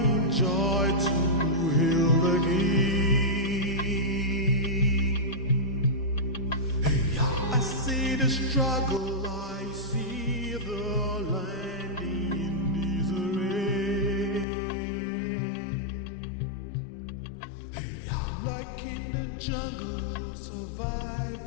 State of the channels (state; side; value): drops out; right; at 14.5 s